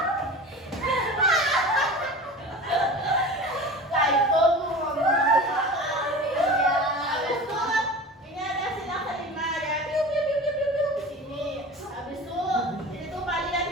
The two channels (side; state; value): both; normal; correlation 0.35